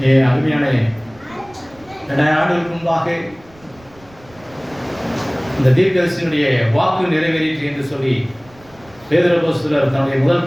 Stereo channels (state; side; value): noise; right; rumble, 26 dB below the sound